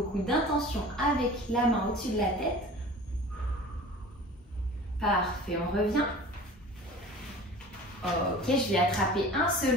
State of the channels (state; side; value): normal; both; correlation 0.41